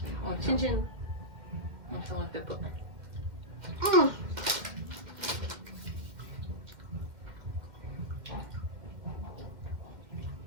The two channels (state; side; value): late; left; 2.2 ms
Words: Chin chin. Non, ça on le fait pas.